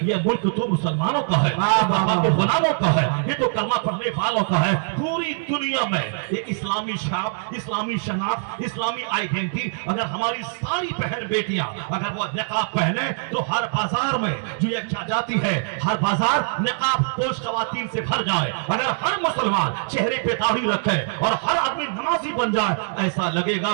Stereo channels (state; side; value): silent; left; digital silence